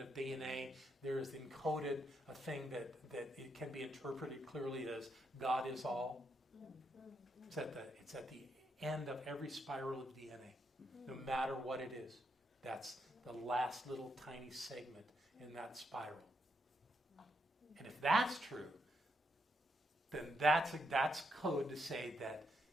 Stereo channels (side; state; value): both; normal; correlation 0.79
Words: of DNA there is encoded a thing that it can be interpreted clearly as God is all. It's at the end of every spiral of DNA, no matter what it is. That's the last little tiny segment in that spiral. And if that's true, then that's code to say that